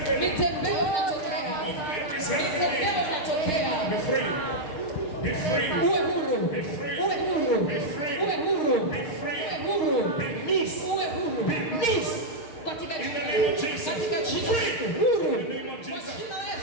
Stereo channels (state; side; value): late; right; 6.5 ms